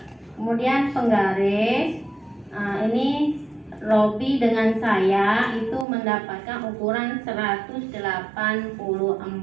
Kemudian penggaris, ini Robi dengan saya itu mendapatkan ukuran 184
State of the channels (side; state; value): left; drops out; at 5.9 s